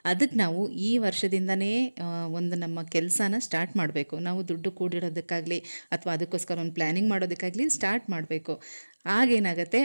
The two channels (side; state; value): both; inverted; correlation -1.00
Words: ಅದಕ್ಕೆ ನಾವು ಈ ವರ್ಷದಿಂದನೇ ಒಂದು ನಮ್ಮ ಕೆಲಸನ ಸ್ಟಾರ್ಟ್ ಮಾಡಬೇಕು. ನಾವು ದುಡ್ಡು ಕೂಡಿಡೋದಕ್ಕಾಗಲಿ ಅಥವಾ ಅದಕ್ಕೋಸ್ಕರ ಒಂದು ಪ್ಲ್ಯಾನಿಂಗ್ ಮಾಡೋದಕ್ಕಾಗಲಿ ಸ್ಟಾರ್ಟ್ ಮಾಡಬೇಕು. ಆಗೇನಾಗುತ್ತೆ,